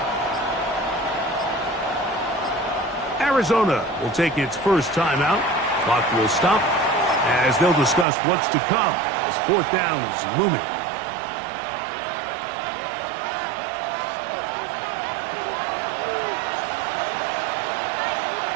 Arizona will take its first timeout. Clock will stop as they'll discuss what's to come as fourth down is looming.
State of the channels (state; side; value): drops out; left; at 8.1 s